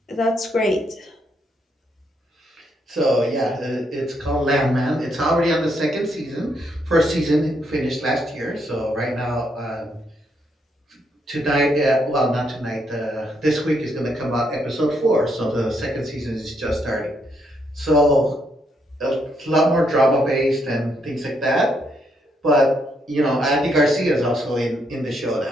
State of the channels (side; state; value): both; normal; correlation 0.76